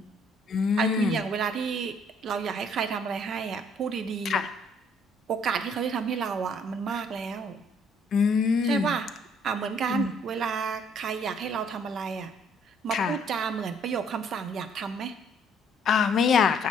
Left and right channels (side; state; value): both; normal; correlation 0.63